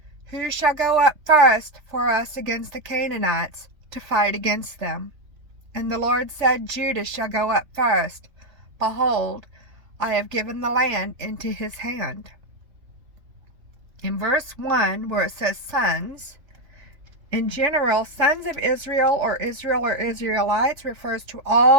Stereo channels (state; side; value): late; left; 3.4 ms